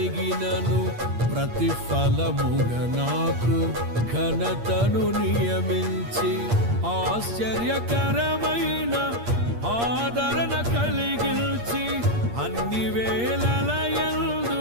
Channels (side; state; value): left; late; 8.6 ms